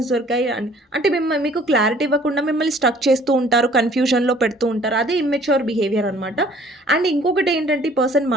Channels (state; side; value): normal; both; correlation 0.55